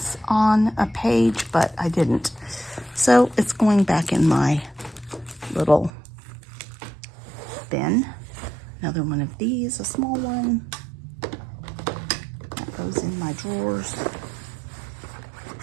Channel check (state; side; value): drops out; left; at 5.9 s